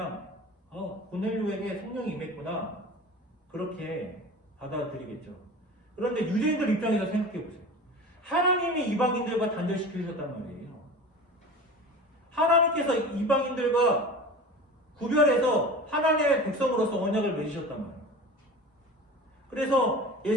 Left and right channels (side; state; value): both; normal; correlation 0.35